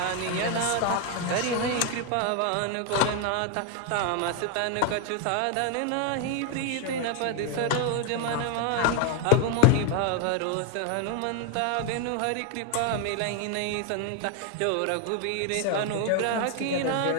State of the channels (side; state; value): both; different; correlation 0.01